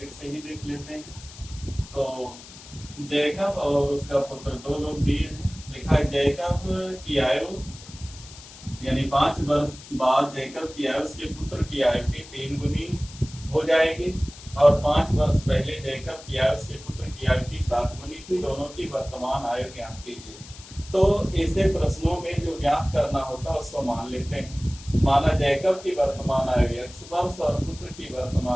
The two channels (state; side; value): noise; left; hiss, 18 dB below the sound